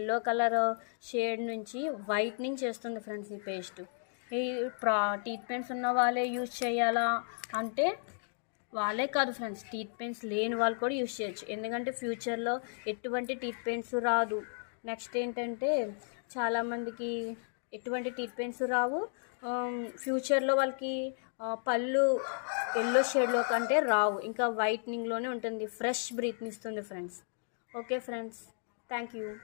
కలర్ షేడ్ నుంచి వైట్నింగ్ చేస్తుంది ఫ్రెండ్స్ ఈ పేస్ట్. ఈ టీత్ పెయిన్స్ ఉన్న వాళ్ళే యూజ్ చేయాలా అంటే వాళ్ళే కాదు ఫ్రెండ్స్, టీత్ పెయిన్స్ లేని వాళ్ళు కూడా యూజ్ చేయొచ్చు. ఎందుకంటే ఫ్యూచర్లో ఎటువంటి టీత్ పెయిన్స్ రాదు. నెక్స్ట్ ఏంటంటే చాలామందికి ఎటువంటి టీత్ పెయిన్స్ రావు. ఫ్యూచర్లో వాళ్ళకి పళ్ళు ఎల్లో షేడ్లో కంటే రావు, ఇంకా వైట్నింగ్లోనే ఉంటుంది, ఫ్రెష్ బ్రీత్ని ఇస్తుంది friends. Okay friends, thank you.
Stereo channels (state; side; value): silent; right; digital silence